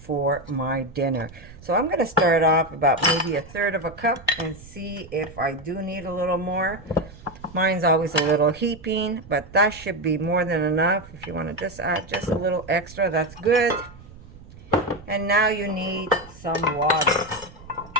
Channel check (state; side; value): noise; right; rumble, 19 dB below the sound